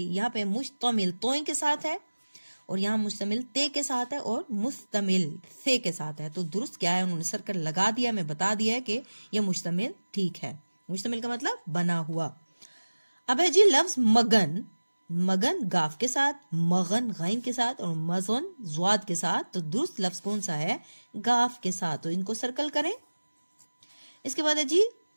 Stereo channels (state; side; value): inverted; both; correlation -1.00